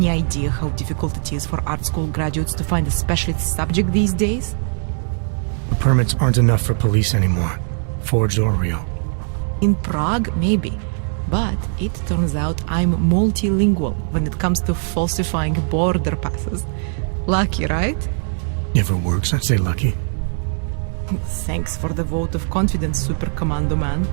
idea how difficult it is for art school graduates to find a specialist subject these days? The permits aren't enough for police anymore, forged or real. In Prague, maybe. But it turns out I'm multilingual when it comes to falsifying border passes. Lucky, right? If it works, I'd say lucky. Thanks for the vote of confidence, Super Commando Man.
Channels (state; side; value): silent; left; 60 dB below the other